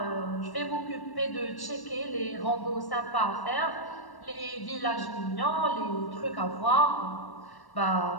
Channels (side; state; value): right; late; 1.1 ms